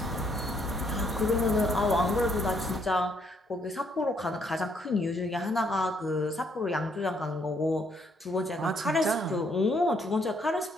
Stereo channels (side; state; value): both; normal; correlation 0.70